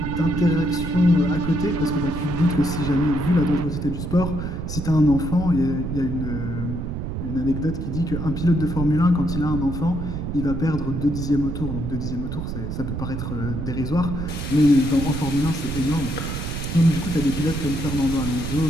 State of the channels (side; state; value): right; noise; rumble, 4 dB below the sound